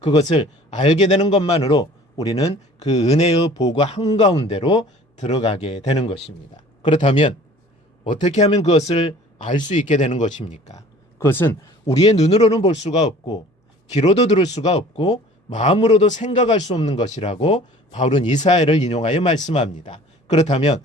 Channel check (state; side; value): normal; both; correlation 0.48